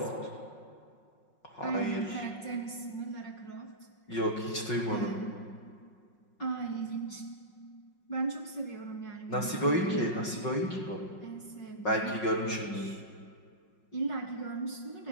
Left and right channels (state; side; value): late; right; 5.5 ms